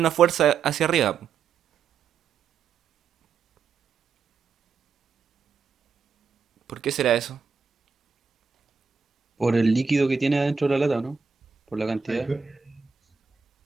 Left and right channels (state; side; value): quieter; left; 5.7 dB